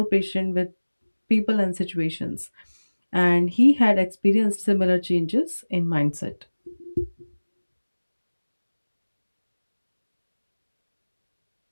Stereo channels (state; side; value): inverted; both; correlation -1.00